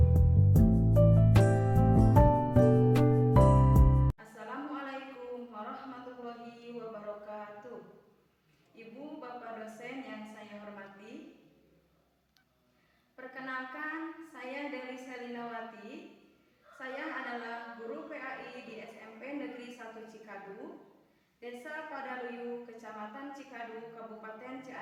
warahmatullahi wabarakatuh. Ibu, Bapak dosen yang saya hormati, perkenalkan, saya Deli Selinawati. Saya adalah guru PAI di SMP Negeri 1 Cikadu, Desa Padaluyu, Kecamatan Cikadu, Kabupaten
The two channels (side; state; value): both; identical; correlation 1.00